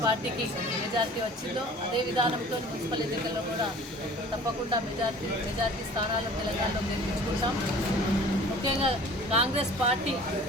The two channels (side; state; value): both; normal; correlation 0.46